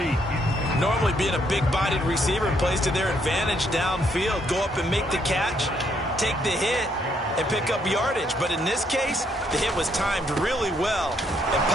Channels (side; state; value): both; normal; correlation 0.72